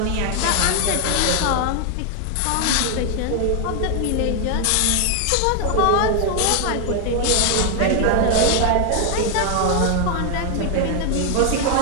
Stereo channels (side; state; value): both; different; correlation 0.00